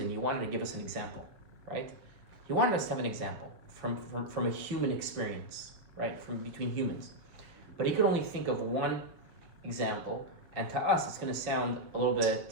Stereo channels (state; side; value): late; left; 6.3 ms